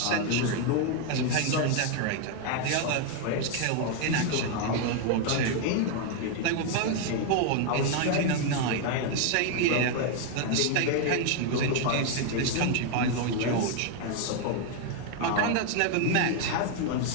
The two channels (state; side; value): different; both; correlation 0.01